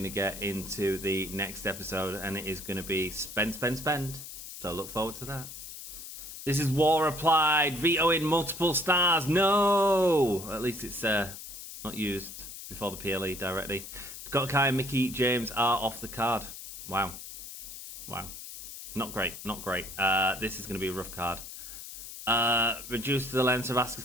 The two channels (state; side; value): noise; left; hiss, 11 dB below the sound